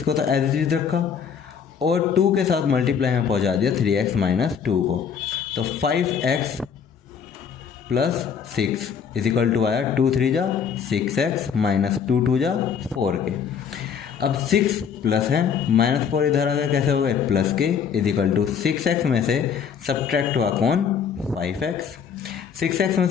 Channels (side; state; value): right; quieter; 7.1 dB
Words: को तो एज इट इज रखा और 2 के साथ मल्टीप्लाई में पहुंचा दिया 3x माइनस 2 को, तो 5x plus 6 is equal to आया 2 3 जा 6x माइनस 2 2 जा 4 के। अब 6 प्लस है माइनस 4 इधर आ गया, कैसे हो गए प्लस के, इज इक्वल टू 6x में से सब्ट्रैक्ट हुआ कौन 5x, 6x में